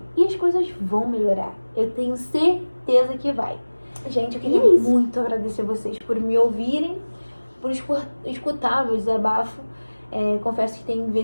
E as coisas vão melhorar. Eu tenho certeza que vai. Gente, eu queria muito agradecer vocês por me ouvirem, por escutar meu desabafo. Confesso que tem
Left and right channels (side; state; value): both; inverted; correlation -1.00